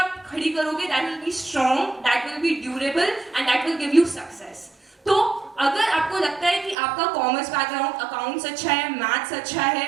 खड़ी करोगे, that will be strong, that will be durable and that will give you success. तो अगर आपको लगता है कि आपका कॉमर्स बैकग्राउंड, अकाउंट्स अच्छा है, मैथ्स अच्छा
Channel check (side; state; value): left; drops out; at 6.8 s